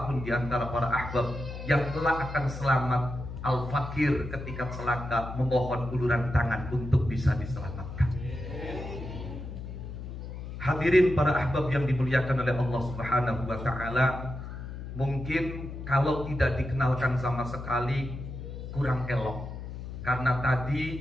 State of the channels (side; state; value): left; noise; hum, 9 dB below the sound